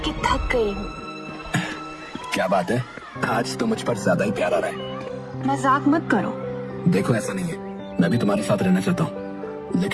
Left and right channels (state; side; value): identical; both; correlation 1.00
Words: थक गई हूँ। क्या बात है, आज तो मुझ पर ज्यादा ही प्यार आ रहा है। मजाक मत करो। देखो ऐसा नहीं है, मैं भी तुम्हारे साथ रहना चाहता हूँ,